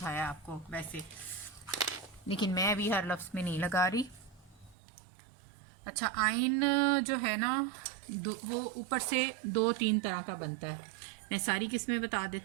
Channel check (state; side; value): drops out; left; at 4.8 s